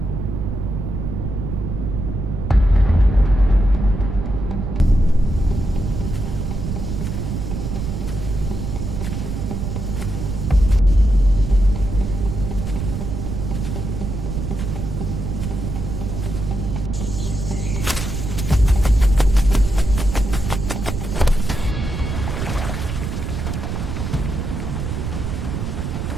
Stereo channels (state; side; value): noise; right; rumble, 4 dB below the sound